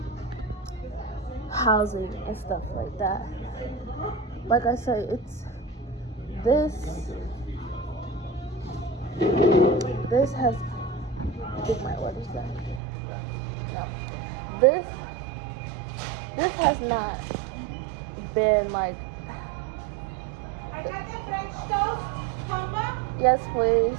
housing and stuff like that. Like I said, it's this has, get my orders back. No, this has not been like. Yes, please.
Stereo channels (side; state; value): left; drops out; at 12.8 s